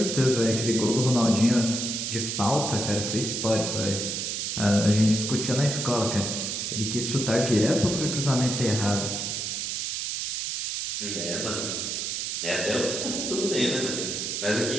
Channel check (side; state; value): right; noise; hiss, 2 dB below the sound